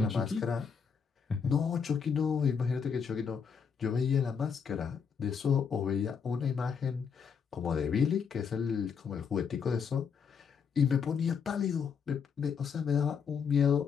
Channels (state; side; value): quieter; right; 6.5 dB